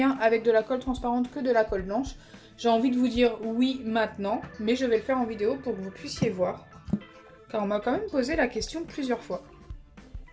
avec de la colle transparente que de la colle blanche. J'ai envie de vous dire oui maintenant, mais je vais le faire en vidéo pour que vous puissiez voir, car on m'a quand même posé la question plusieurs fois.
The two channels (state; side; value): identical; both; correlation 1.00